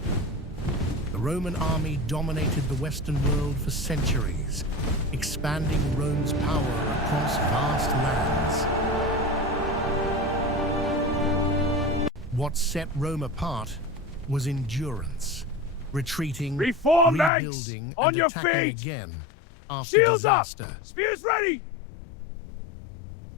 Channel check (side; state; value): right; drops out; at 17.3 s